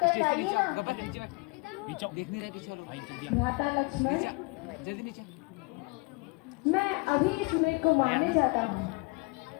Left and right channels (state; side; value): quieter; right; 28.4 dB